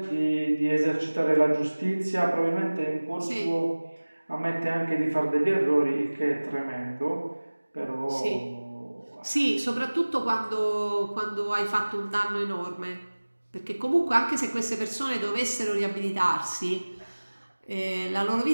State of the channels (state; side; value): inverted; both; correlation -1.00